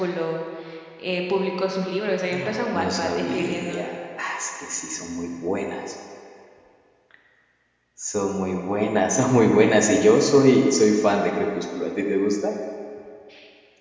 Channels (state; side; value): identical; both; correlation 1.00